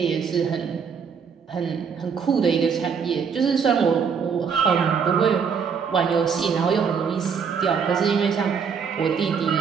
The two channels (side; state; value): left; quieter; 6.4 dB